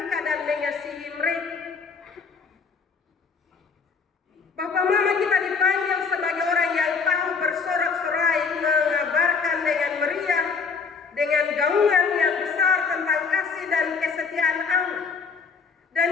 Bapak Mama, kita dipanggil sebagai orang yang tahu bersorak-sorai, mengabarkan dengan meriah, dengan gaungan yang besar tentang kasih dan kesetiaan Allah. Dan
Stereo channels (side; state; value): right; quieter; 5.3 dB